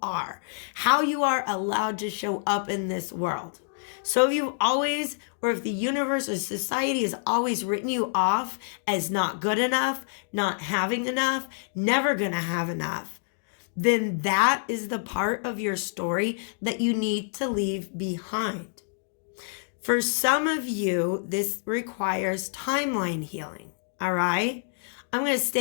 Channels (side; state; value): right; silent; digital silence